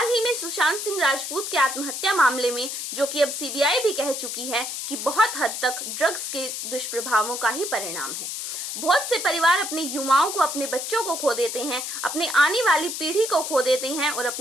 ही में सुशांत सिंह राजपूत के आत्महत्या मामले में, जो कि अब CBI भी कह चुकी है कि बहुत हद तक ड्रग्स के दुष्प्रभावों का ही परिणाम है। बहुत से परिवार अपने युवाओं को, अपने बच्चों को खो देते हैं, अपने आने वाली पीढ़ी को खो देते हैं और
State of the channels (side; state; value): left; noise; hiss, 5 dB below the sound